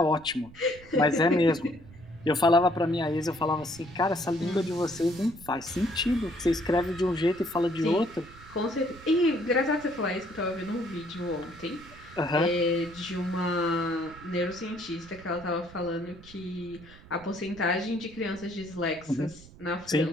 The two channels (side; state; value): right; noise; rumble, 20 dB below the sound